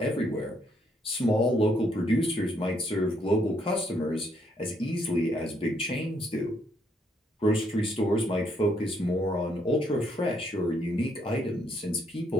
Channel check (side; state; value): both; normal; correlation 0.72